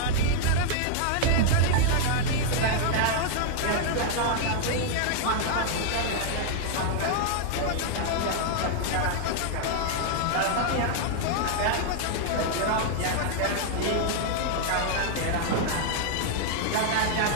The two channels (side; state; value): both; different; correlation -0.01